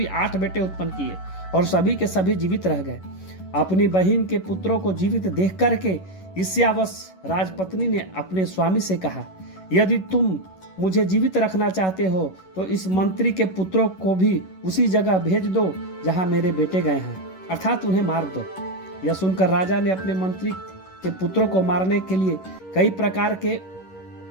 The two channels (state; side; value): late; right; 11 ms